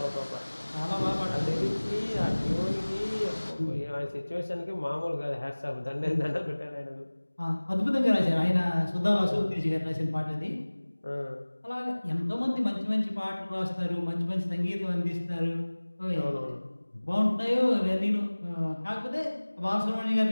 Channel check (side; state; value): both; inverted; correlation -1.00